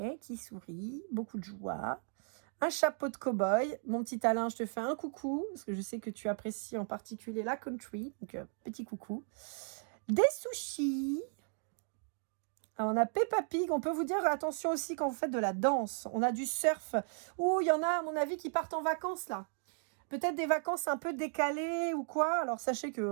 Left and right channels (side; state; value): left; silent; 54 dB below the other